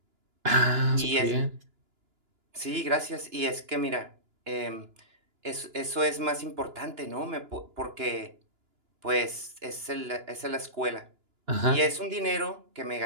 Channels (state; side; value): late; left; 2.9 ms